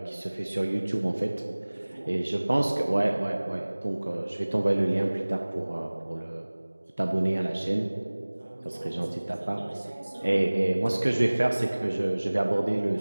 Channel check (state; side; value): inverted; both; correlation -1.00